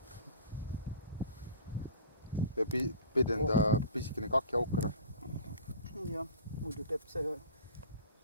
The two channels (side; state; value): both; inverted; correlation -0.40